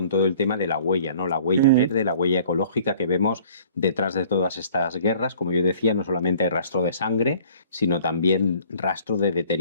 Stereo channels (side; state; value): both; inverted; correlation -0.53